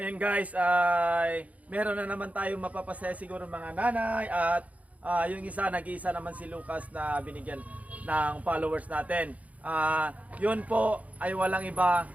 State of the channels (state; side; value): late; left; 0.070 ms